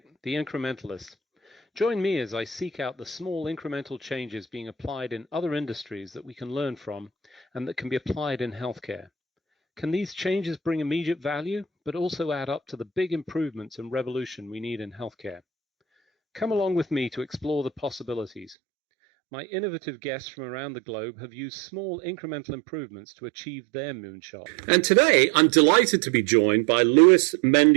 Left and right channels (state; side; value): drops out; left; at 18.6 s